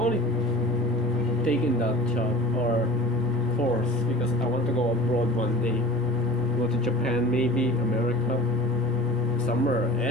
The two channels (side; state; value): both; normal; correlation 0.39